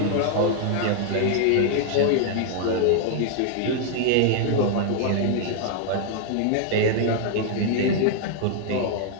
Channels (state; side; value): different; both; correlation -0.01